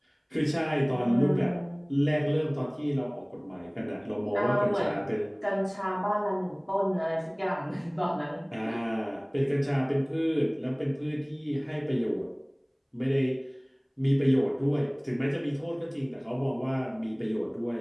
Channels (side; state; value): both; identical; correlation 1.00